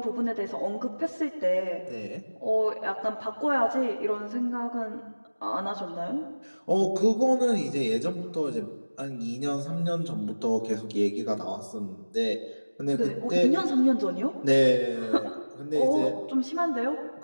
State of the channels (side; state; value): both; inverted; correlation -1.00